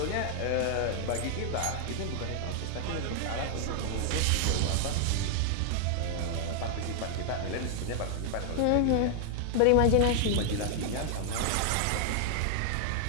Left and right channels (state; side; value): different; both; correlation 0.00